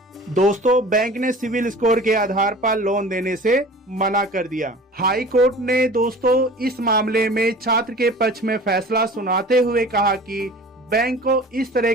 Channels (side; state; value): both; normal; correlation 0.41